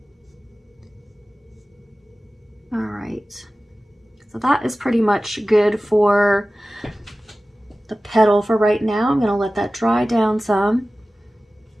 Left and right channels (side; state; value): both; normal; correlation 0.96